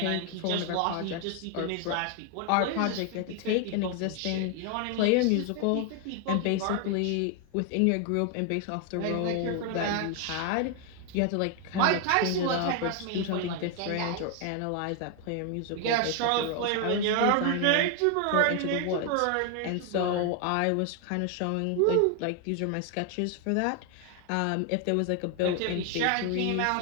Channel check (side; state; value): both; different; correlation 0.01